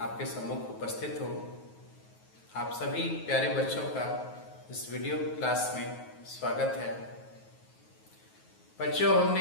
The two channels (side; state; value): right; late; 9.3 ms